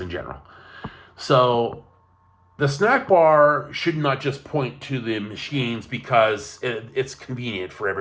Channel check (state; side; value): identical; both; correlation 1.00